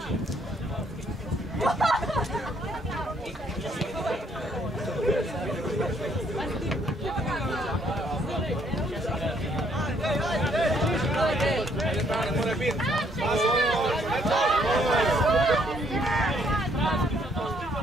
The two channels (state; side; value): normal; both; correlation 0.68